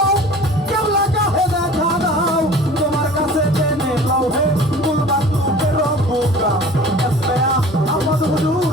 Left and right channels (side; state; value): both; normal; correlation 0.44